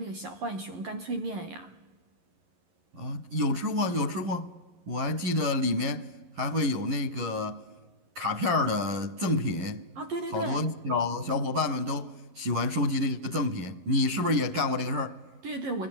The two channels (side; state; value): left; late; 11 ms